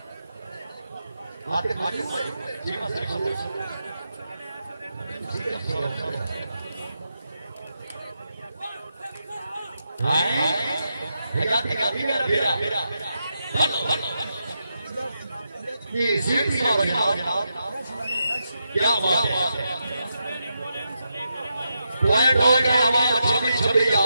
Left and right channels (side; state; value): both; inverted; correlation -0.85